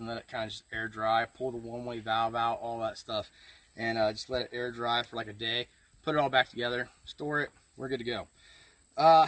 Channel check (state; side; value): identical; both; correlation 1.00